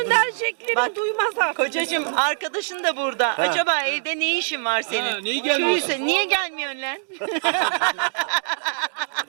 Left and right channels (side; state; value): left; silent; digital silence